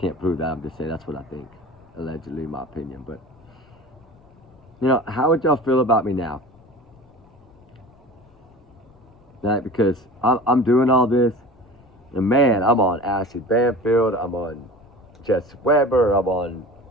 prove that. I'm just saying that's what I think, allegedly, in my opinion. But, you know, how would y'all feel about me now? Right? Because I'm doing all this, and man, I'm on Ashley Banfield, I'm on Jess Weber, I'm on,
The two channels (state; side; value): noise; left; rumble, 28 dB below the sound